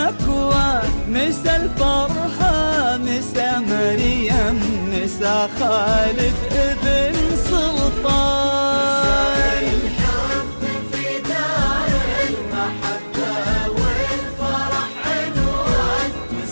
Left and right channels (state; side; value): inverted; both; correlation -1.00